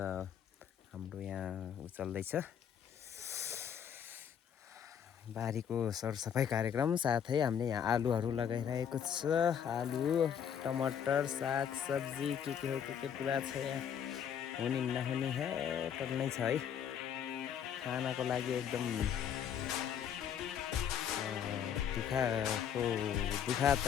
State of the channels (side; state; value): right; quieter; 8.5 dB